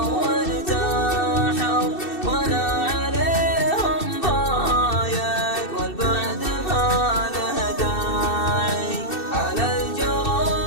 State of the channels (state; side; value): late; right; 2.6 ms